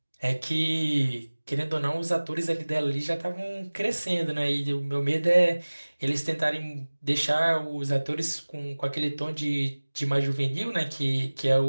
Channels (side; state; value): both; inverted; correlation -1.00